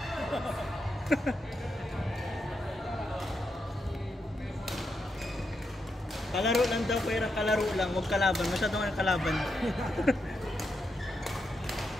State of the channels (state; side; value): normal; both; correlation 0.84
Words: Kalaro lang daw, pero kalaro lang, huwag kalaban. Masyadong ang kalaban.